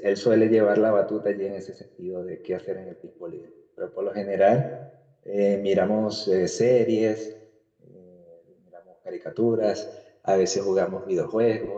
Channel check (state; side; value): identical; both; correlation 1.00